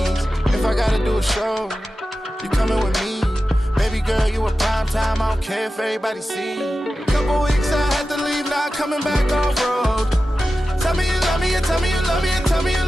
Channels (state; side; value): normal; both; correlation 0.93